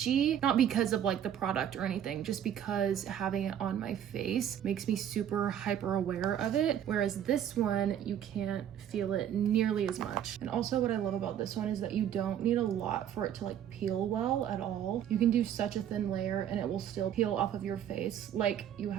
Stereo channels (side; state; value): left; quieter; 9.9 dB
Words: not because of like the product or anything, just because having it on my face makes me super hyper aware of it, whereas this one, you can't feel it nearly as much. And also what I love about this one is that you don't need a lot for it to like peel well at all. You can do such a thin layer and it will still peel off of your face like you